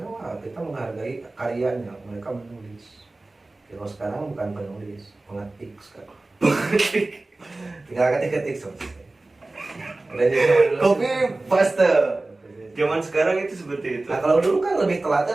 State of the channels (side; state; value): left; quieter; 3.0 dB